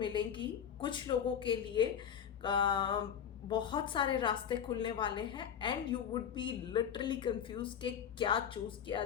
कुछ लोगों के लिए बहुत सारे रास्ते खुलने वाले हैं and you would be literally confuse कि क्या चूज़ किया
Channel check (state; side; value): quieter; right; 8.5 dB